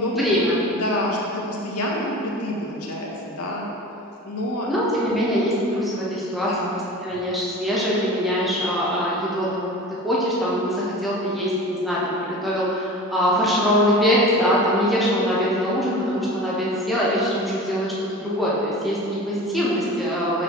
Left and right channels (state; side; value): normal; both; correlation 0.36